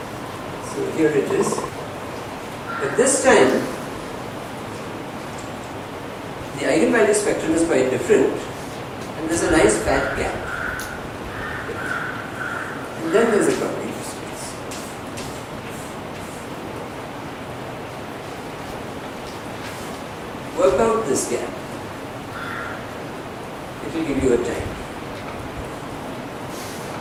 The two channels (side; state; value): both; identical; correlation 1.00